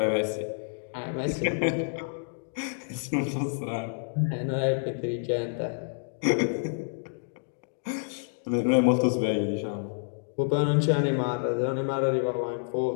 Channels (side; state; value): right; silent; digital silence